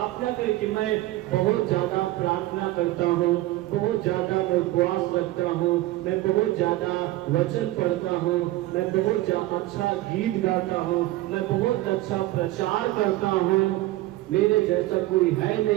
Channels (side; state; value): left; quieter; 17.0 dB